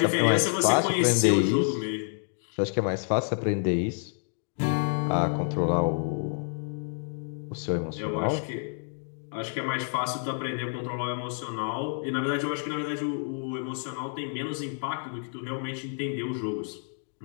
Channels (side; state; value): right; silent; 59 dB below the other